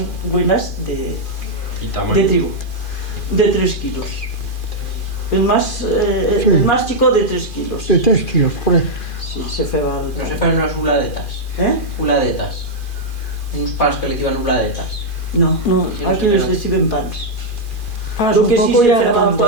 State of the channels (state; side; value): late; right; 2.4 ms